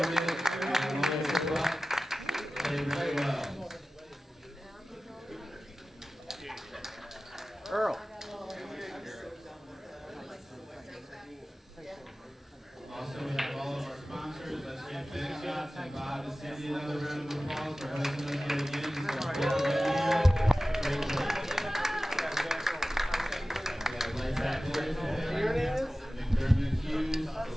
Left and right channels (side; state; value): both; normal; correlation 0.96